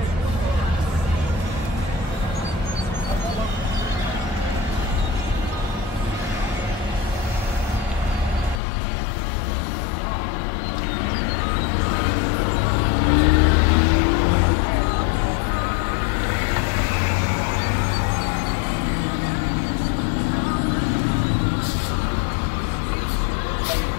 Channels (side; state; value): right; drops out; at 8.6 s